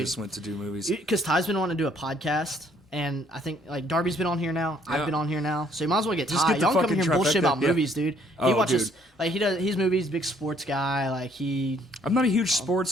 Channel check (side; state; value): both; normal; correlation 0.64